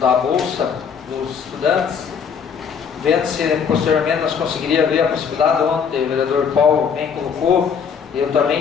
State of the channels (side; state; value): right; quieter; 6.8 dB